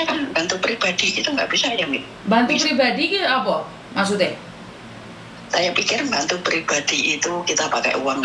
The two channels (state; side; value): identical; both; correlation 1.00